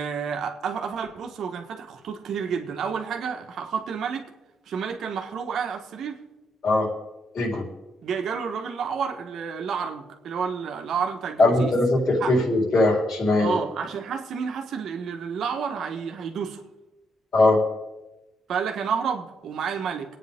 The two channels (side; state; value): both; normal; correlation 0.76